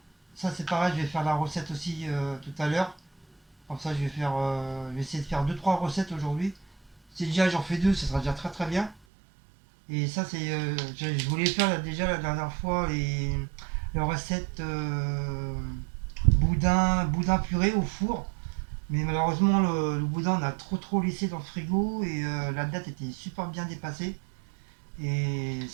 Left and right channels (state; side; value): drops out; left; at 9.0 s